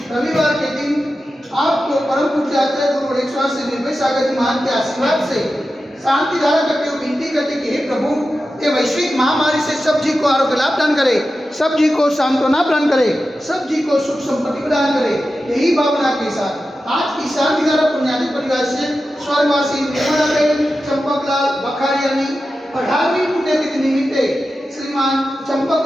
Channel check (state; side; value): normal; both; correlation 0.92